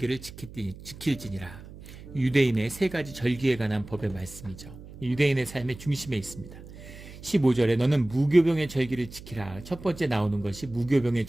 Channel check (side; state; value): right; noise; hum, 16 dB below the sound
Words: 지킬지니라. 유대인의 3가지 절기에 관한 법의 말씀이죠. 유대인의 삶의 중심에 있습니다. 15절에 너는 무교병의 절기를 지키라. 첫 번째 나오는 것이 무교병의